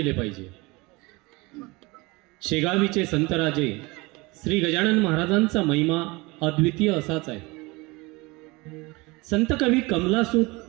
पाहिजे। शेगावीचे संतराजे श्री गजानन महाराजांचा महिमा अद्वितीय असाच आहे। संत कवी कमलासूत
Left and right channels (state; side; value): quieter; left; 24.3 dB